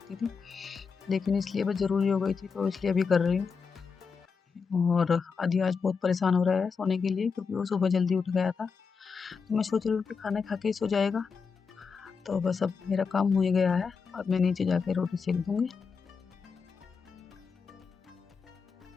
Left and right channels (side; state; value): right; quieter; 5.5 dB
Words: थी, लेकिन इसलिए बस ज़रूरी हो गई थी तो इसलिए अभी कर रही हूँ। और आदि आज बहुत परेशान हो रहा है सोने के लिए, क्योंकि वो सुबह जल्दी उठ गया था, तो मैं सोच रही हूँ कि खाना खा के ही सो जाएगा। तो बस अब मेरा काम हो ही गया है, अब मैं नीचे जाके रोटी सेक दूँगी।